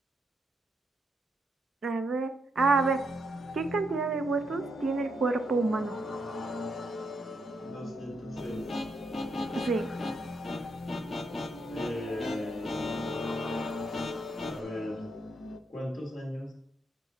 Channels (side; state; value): both; normal; correlation 0.79